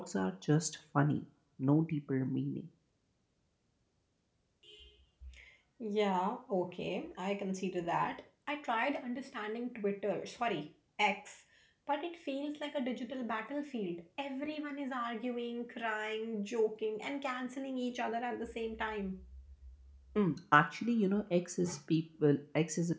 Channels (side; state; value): both; identical; correlation 1.00